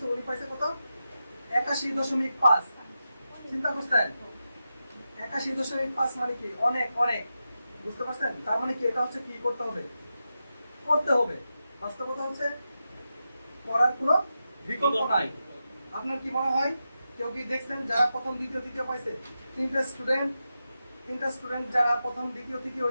উনি পাইছে কত? 81.5। চিন্তা করছেন? 81.5 মানে কি? অনেক অনেক। বুঝতে পারছেন? তার মানে কি এটা হচ্ছে কি করতে হবে? করতে হবে। বাস্তবতা হচ্ছে পড়ার কোনো বিকল্প নাই। আপনার কি মনে হয় কেউ কি দেখছেন যারা প্রথম দ্বিতীয় তৃতীয় পাইছে? তিনটা স্টুডেন্ট যারা প্রথম দ্বিতীয় তৃতীয়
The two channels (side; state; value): both; inverted; correlation -0.90